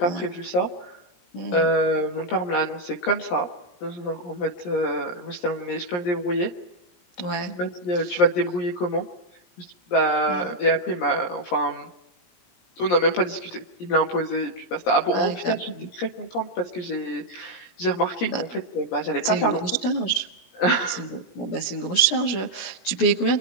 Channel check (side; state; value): right; late; 17 ms